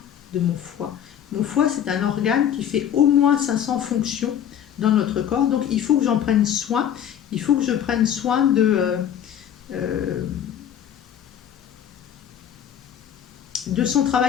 de mon foie. Mon foie, c'est un organe qui fait au moins 500 fonctions dans notre corps, donc il faut que j'en prenne soin, il faut que je prenne soin de son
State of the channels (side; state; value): right; quieter; 9.6 dB